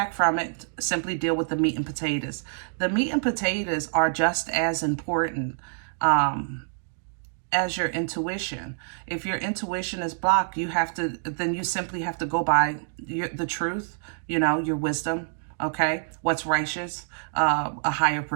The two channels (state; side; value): silent; left; digital silence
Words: from it. Simply deal with the meat and potatoes. The meat and potatoes are just as important as your intuition. If your intuition is blocked, then you simply have to go by the truth, you know, your wisdom, okay? What's righteous, a higher